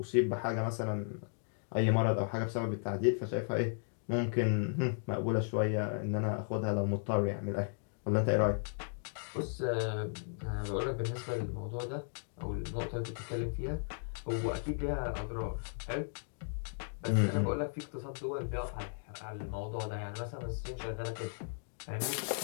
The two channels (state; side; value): silent; right; digital silence